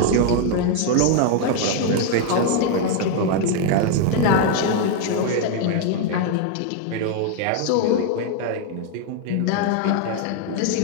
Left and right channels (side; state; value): both; different; correlation 0.00